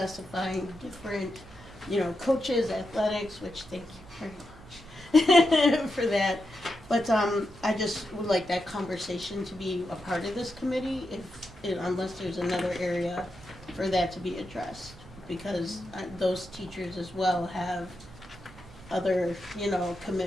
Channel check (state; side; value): noise; right; hum, 22 dB below the sound